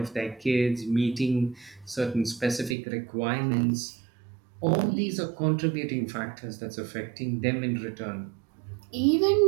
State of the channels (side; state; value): left; drops out; at 2.8 s